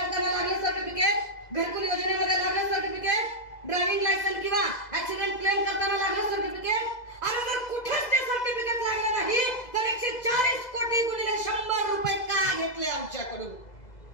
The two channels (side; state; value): right; late; 2.0 ms